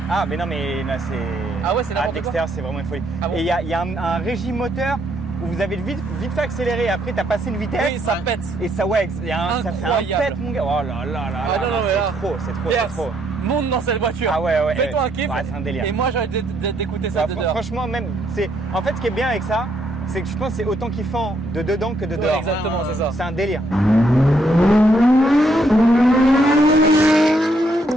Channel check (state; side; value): normal; both; correlation 0.73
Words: Ah, mais non, mais là, c'est. Ah ouais, c'est n'importe quoi. l'extérieur, c'est vraiment une folie. Ah bon? Et il y a un régime moteur où vous avez vite fait accélérer. Après, t'as passé une vitesse. Oui, ça pète. Et ça, ouais, ça fait un Incroyable. pète, mon gars. Oh là là là. Ah non, non, mais là. c'est trop, Yes. c'est trop. Monte dans cette voiture. Ah ouais, ouais. Fais-toi un kiff. Ouais, c'est un délire. Et moi, j'ai envie d'écouter ça Bah, de dehors. franchement, même, en fait, ce qui est bien avec ça, c'est que je pense que c'est autant kiffant de dedans que de Ouais, dehors. exactement, c'est ça. C'est un délire.